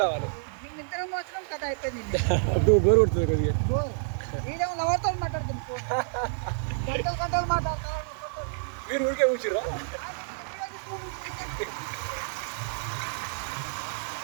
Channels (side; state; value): left; silent; digital silence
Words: రావాలి. అప్పుడు బోర్ కొడుతుంది కొద్దిగా. మీరు ఊరికే కూర్చురా.